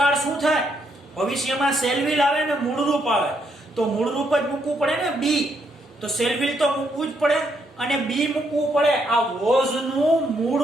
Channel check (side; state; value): both; normal; correlation 0.75